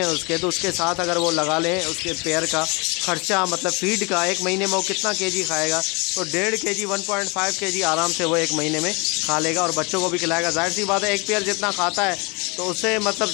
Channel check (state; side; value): quieter; right; 29.3 dB